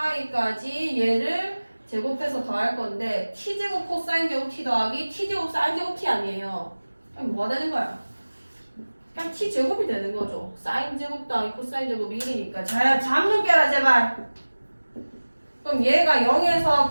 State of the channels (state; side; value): inverted; both; correlation -1.00